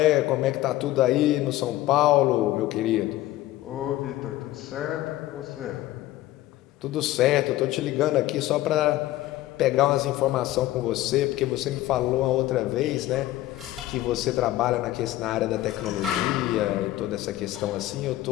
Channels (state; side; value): quieter; right; 15.6 dB